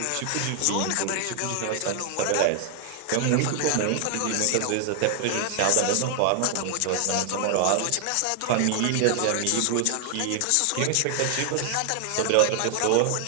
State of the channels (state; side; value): different; both; correlation 0.00